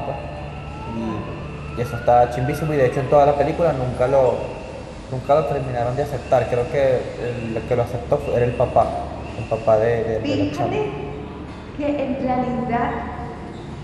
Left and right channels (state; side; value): identical; both; correlation 1.00